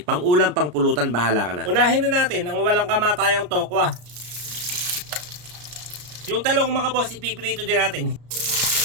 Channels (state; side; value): late; left; 34 ms